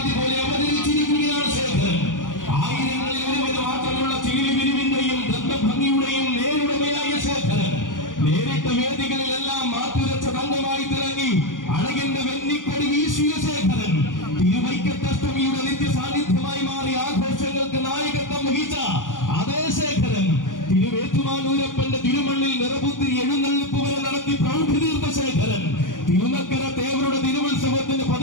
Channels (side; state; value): right; late; 0.88 ms